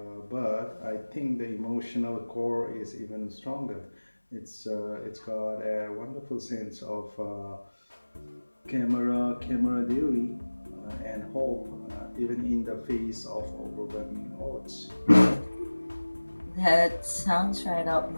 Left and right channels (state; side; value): inverted; both; correlation -1.00